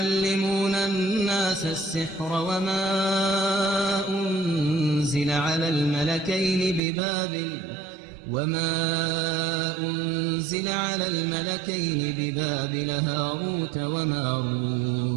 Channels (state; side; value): drops out; left; at 6.8 s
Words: الناس السحر وما أنزل على الملكين ببابل هاروت